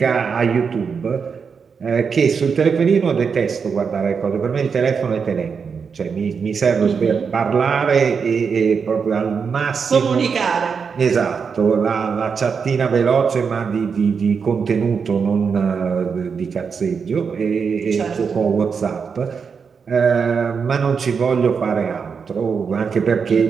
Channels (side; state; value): left; quieter; 5.9 dB